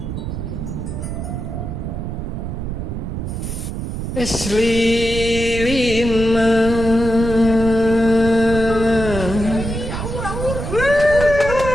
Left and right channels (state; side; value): noise; right; rumble, 5 dB below the sound